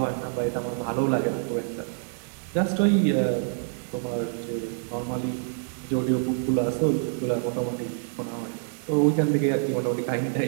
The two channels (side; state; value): left; silent; digital silence